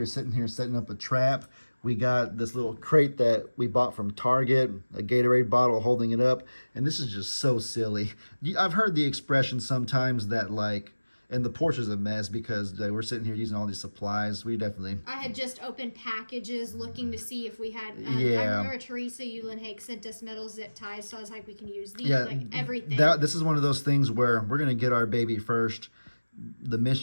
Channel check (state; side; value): inverted; both; correlation -1.00